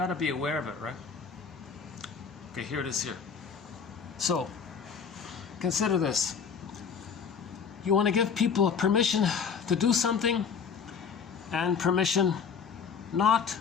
to be aware of it, right? Okay, here it is here. So consider this. You want to give people permission to do something and permission not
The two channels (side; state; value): right; quieter; 6.3 dB